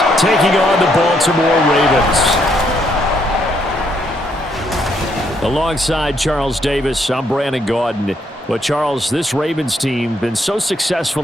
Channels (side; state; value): both; normal; correlation 0.72